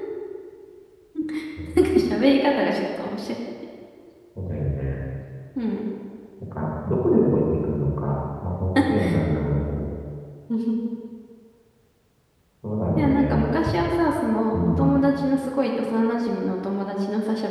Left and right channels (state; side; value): identical; both; correlation 1.00